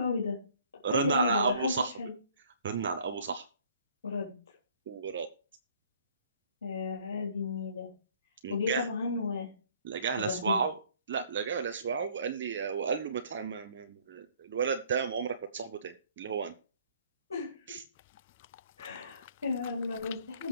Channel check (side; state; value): both; inverted; correlation -0.59